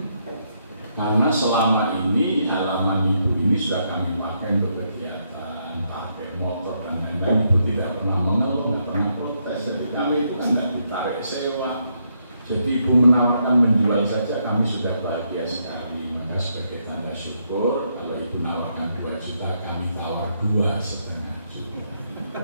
Karena selama ini halaman ibu ini sudah kami pakai untuk kegiatan, pakai motor dan lain-lain, itu tidak pernah mengeluh, tidak pernah protes. Jadi kami itu kan tidak ditarik sewa. Jadi ibu menawarkan menjual saja, kami sudah bahagia sekali. Maka sebagai tanda syukur, kalau ibu menawarkan 2 juta, kami tawar 2,5 juta.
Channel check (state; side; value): inverted; both; correlation -0.77